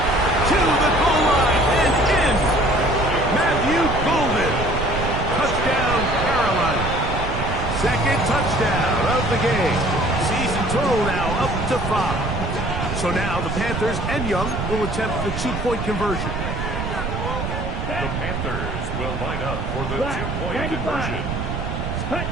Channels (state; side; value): noise; right; rumble, 4 dB below the sound